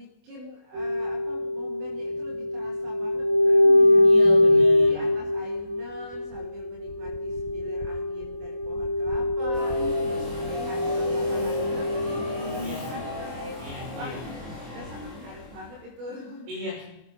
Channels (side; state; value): left; late; 24 ms